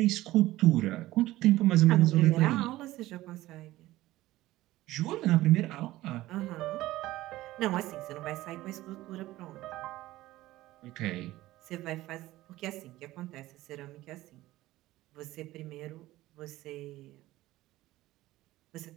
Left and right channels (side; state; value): left; quieter; 16.7 dB